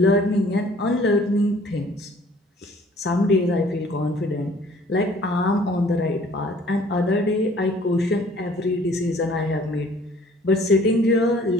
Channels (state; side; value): normal; both; correlation 0.55